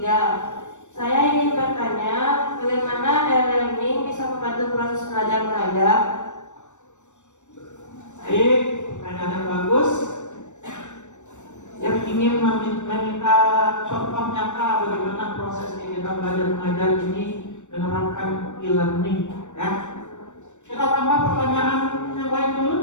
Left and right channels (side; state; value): right; late; 0.84 ms